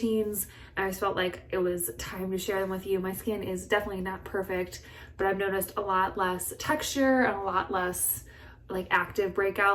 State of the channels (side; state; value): both; identical; correlation 1.00